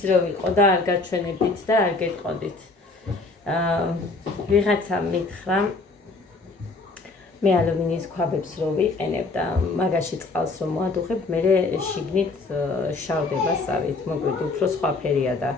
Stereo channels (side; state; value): right; quieter; 3.6 dB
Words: რო ვიყო და არ გაჩვენებდით და არ გეტყოდით. ვიღაცა მითხრა მე ალუმინის ქვაბებს რო ვიყენებ და მაგაში წყალს რო მოადუხებ, მე შიგნით შავდება სავით, მოგვიდ უფრო სხვა ფერია და